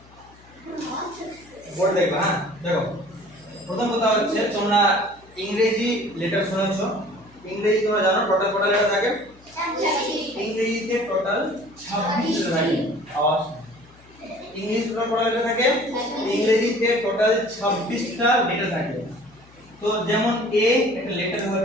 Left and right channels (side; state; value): left; noise; hum, 26 dB below the sound